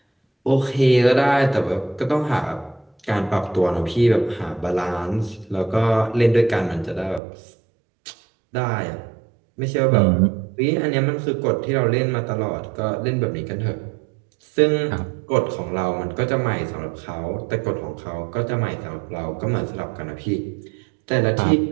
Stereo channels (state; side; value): drops out; left; at 7.2 s